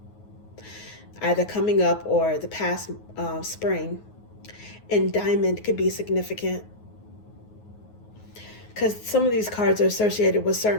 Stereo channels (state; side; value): late; right; 9.5 ms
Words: either coming up or the past spring. And Diamond could be significant, because some of these cards are associated with